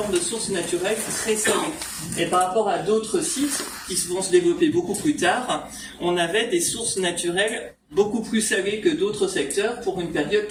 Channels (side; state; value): both; identical; correlation 1.00